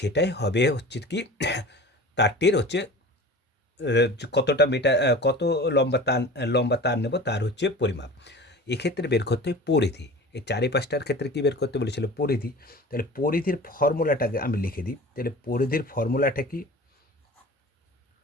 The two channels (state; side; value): normal; both; correlation 0.38